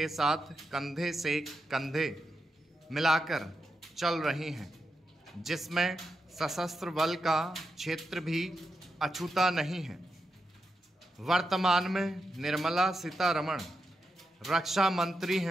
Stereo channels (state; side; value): normal; both; correlation 0.87